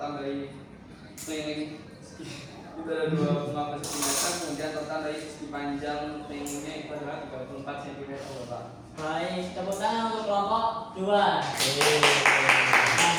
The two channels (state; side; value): identical; both; correlation 1.00